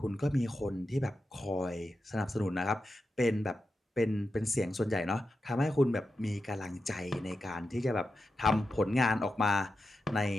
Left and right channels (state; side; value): normal; both; correlation 0.89